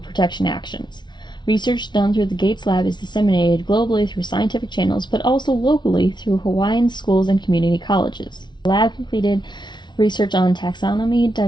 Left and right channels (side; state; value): right; late; 0.21 ms